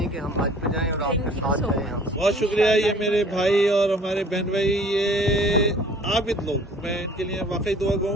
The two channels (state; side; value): normal; both; correlation 0.52